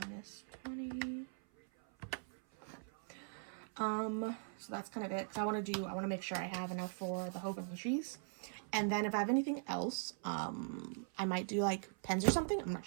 minus 20. So that's kind of it. So I want to make sure I have enough for the Hogan Cheese. And then if I have anything else, I might do like pens or something. I'm not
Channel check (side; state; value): left; silent; 51 dB below the other